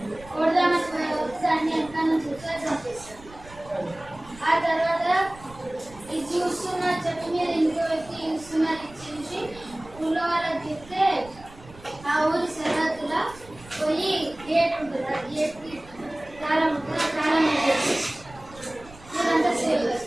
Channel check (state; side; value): noise; right; rumble, 20 dB below the sound